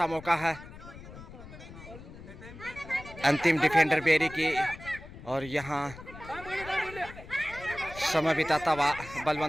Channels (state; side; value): noise; left; rumble, 15 dB below the sound